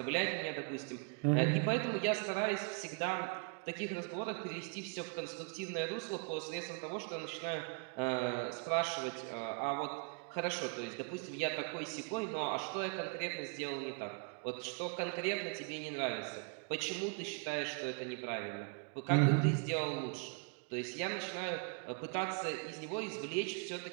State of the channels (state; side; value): quieter; left; 37.8 dB